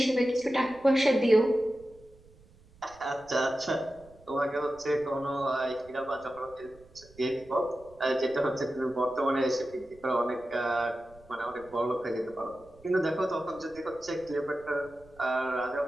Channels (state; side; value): noise; right; rumble, 26 dB below the sound